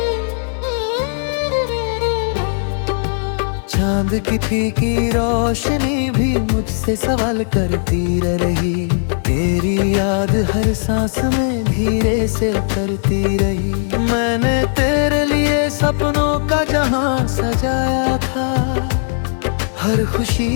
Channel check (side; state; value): right; silent; digital silence